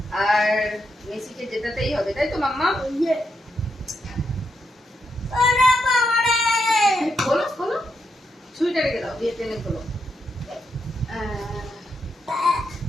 আর মেসিকে জেতাতেই হবে, তাই তো মাম্মা? খোলো খোলো, ছুরিটা রেখে দাও, দিয়ে টেনে খোলো।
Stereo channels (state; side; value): normal; both; correlation 0.82